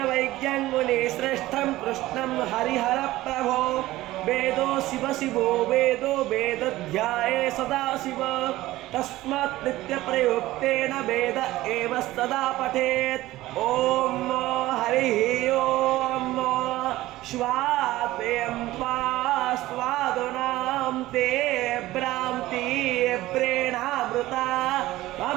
मुनिश्रेष्ठं कृष्णं हरिहर प्रभो। वेदो शिव शिवो वेदो वेदध्याये सदा शिव। तस्मात् नित्यप्रयुक्तेन वेद एव सदा पठेत्। ओम हरिः ओम स्वाद्वयं त्वा स्वादुनां ते भ्रान्ति प्रेणामृता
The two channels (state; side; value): quieter; left; 16.8 dB